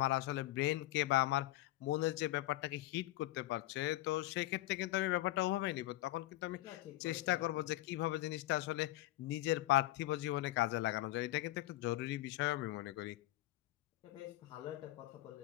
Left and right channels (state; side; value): quieter; right; 17.0 dB